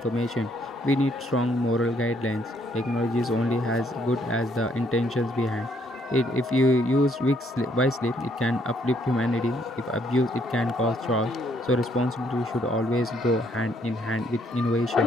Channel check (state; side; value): normal; both; correlation 0.69